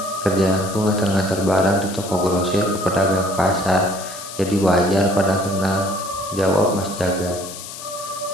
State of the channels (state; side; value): noise; left; hiss, 12 dB below the sound